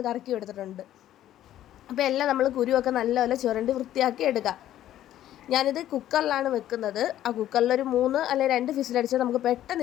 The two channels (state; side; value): quieter; right; 12.5 dB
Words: കറക്കി എടുത്തിട്ടുണ്ട്. അപ്പോൾ എല്ലാം നമ്മൾ കുരുവൊക്കെ നല്ലപോലെ ചുരണ്ടി വൃത്തിയാക്കി എടുക്കാം. ഞാനിത് കുക്കറിലാണ് വെക്കുന്നത്. ആ കുക്കറിലൊരു 3 അല്ലെങ്കിൽ 2 ഫിസിലടിച്ചാൽ നമുക്ക്